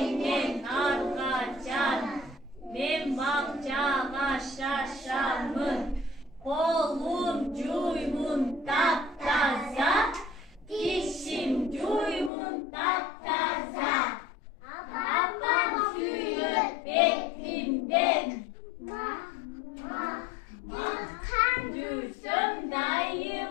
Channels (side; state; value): right; drops out; at 12.3 s